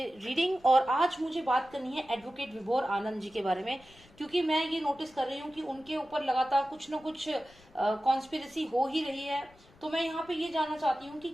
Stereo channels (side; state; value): left; noise; rumble, 26 dB below the sound